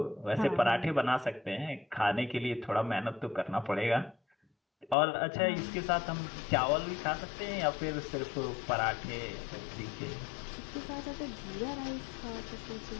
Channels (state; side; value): drops out; right; at 5.0 s